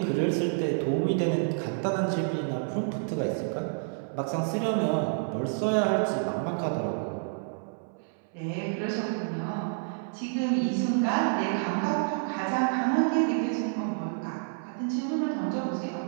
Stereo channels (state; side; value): silent; left; 59 dB below the other